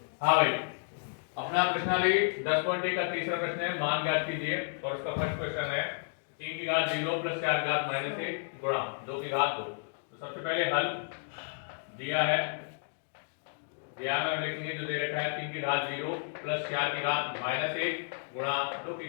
हाँ भाई, अपना प्रश्नावली 10.1 का तीसरा प्रश्न है, मान ज्ञात कीजिए। और उसका फर्स्ट क्वेश्चन है 3 की घात 0 प्लस 4 की घात -1 गुणा 2 की घात 2। तो सबसे पहले हल दिया है, दिया में हम लिखेंगे जो दे रखा है 3 की घात 0 प्लस 4 की घात -1 गुणा 2 की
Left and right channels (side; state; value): right; silent; digital silence